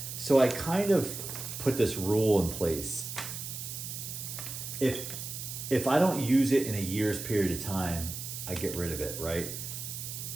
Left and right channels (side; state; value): right; noise; hiss, 7 dB below the sound